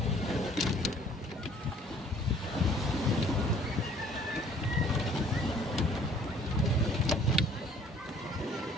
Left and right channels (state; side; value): normal; both; correlation 0.56